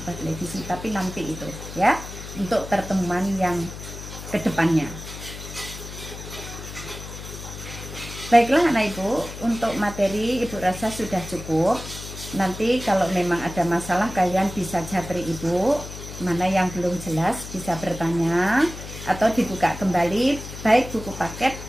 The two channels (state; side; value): noise; left; hum, 11 dB below the sound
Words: televisi, tapi nanti itu ya, untuk pertemuan yang kedepannya. Baiklah anak ibu, untuk materi ibu rasa sudah cukup. Nanti kalau memang ada masalah kalian bisa japri ibu, mana yang belum jelas bisa bertanya atau dibuka kembali baik buku paket